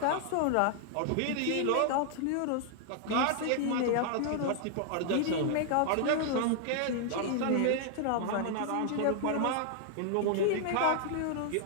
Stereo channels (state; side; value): different; both; correlation 0.00